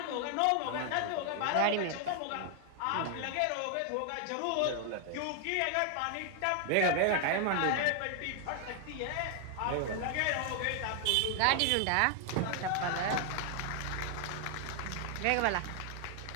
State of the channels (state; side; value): different; both; correlation 0.00